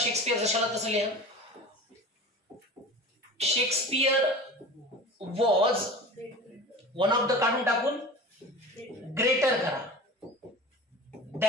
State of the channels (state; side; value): normal; both; correlation 0.35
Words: जशाला तसं लिहा. Shakespeare was one of the काढून टाकून ग्रेटर करा